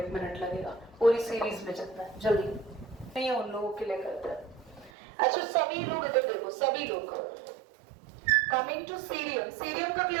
मिनट लगेगा पूरी सीरीज में जितना है, जल्दी नहीं उन लोगों के लिए करते हैं। अच्छा, सभी लोग इधर देखो, सभी लोग कमिंग टू सीरियम का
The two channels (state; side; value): drops out; left; at 4.9 s